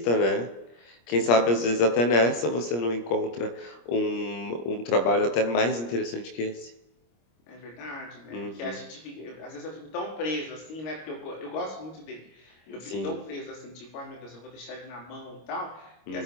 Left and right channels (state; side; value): late; right; 25 ms